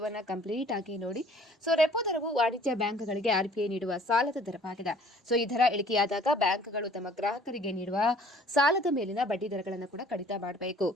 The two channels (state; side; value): normal; both; correlation 0.54